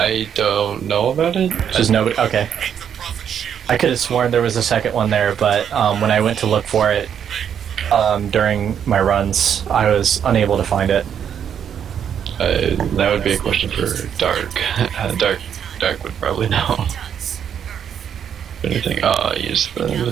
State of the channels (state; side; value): quieter; left; 8.5 dB